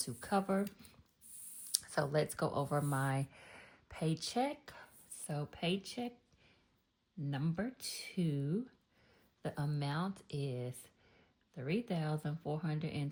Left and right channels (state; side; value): identical; both; correlation 1.00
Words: cover. So let's go over my paycheck. So paycheck number 2, the amount is